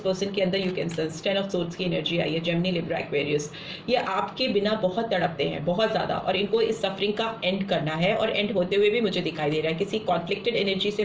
के अंदर you can sense. 10 of swords की एनर्जी आई है, जेमिनी, लिब्रा, एक्वेरियस। ये आपके बिना बहुत तड़पते हैं, बहुत ज़्यादा, और इनको इस सफरिंग का एंड करना है, और एंड होते हुए भी मुझे दिखाई दे रहा है किसी कॉन्फ्लिक्टेड एनर्जी से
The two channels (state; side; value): identical; both; correlation 1.00